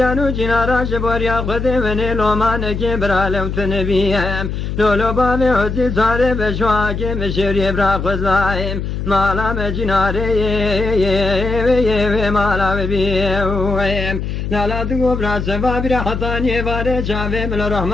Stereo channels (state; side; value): noise; left; hum, 4 dB below the sound